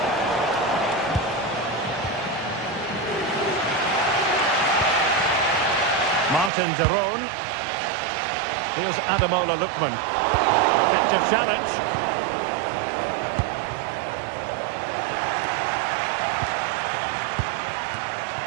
Martin de Roon. Here's Ademola Lookman. Effective challenge.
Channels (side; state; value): left; drops out; at 6.5 s